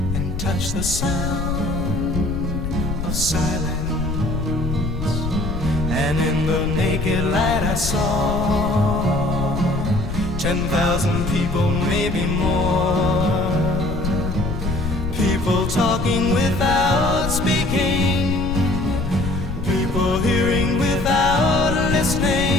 and touched the sound of silence. And in the naked light I saw 10,000 people, maybe more, people talking without speaking, people hearing without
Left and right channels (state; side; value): noise; left; rumble, 4 dB below the sound